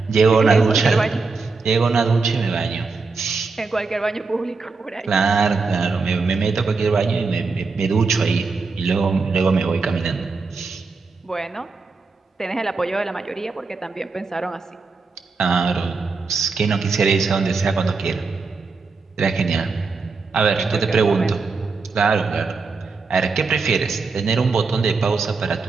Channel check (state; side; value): quieter; left; 4.3 dB